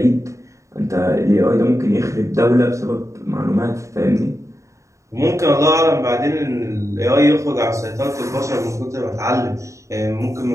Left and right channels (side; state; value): left; late; 0.15 ms